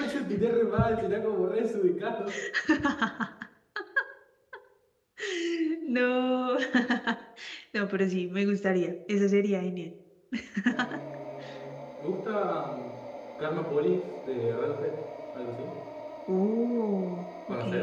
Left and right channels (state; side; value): identical; both; correlation 1.00